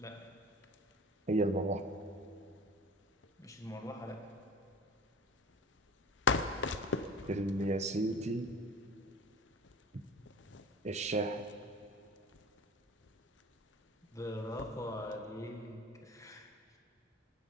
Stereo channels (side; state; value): both; normal; correlation 0.38